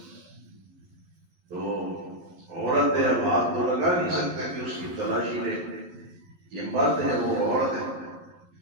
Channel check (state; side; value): late; left; 11 ms